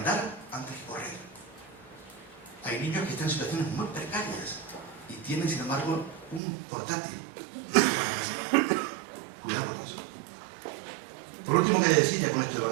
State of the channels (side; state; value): left; drops out; at 6.4 s